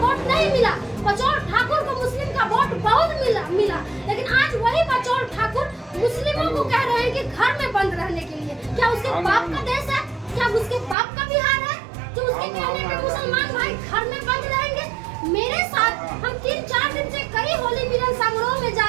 वोट नहीं मिला, बचौल ठाकुर को मुस्लिम का वोट बहुत मिला। लेकिन आज वही बचौल ठाकुर मुस्लिमों को कह रहे हैं कि घर में बंद रहने के लिए। क्या उसके बाप का देश है? क्या उसके बाप का बिहार है जो उसके कहने पे मुसलमान भाई घर में बंद रहेंगे? मेरे साथ हम 3-4 दिन से कई होली मिलन समारोह में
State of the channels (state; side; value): drops out; left; at 11.0 s